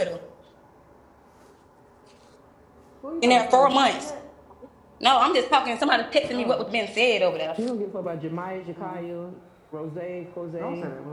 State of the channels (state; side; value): identical; both; correlation 1.00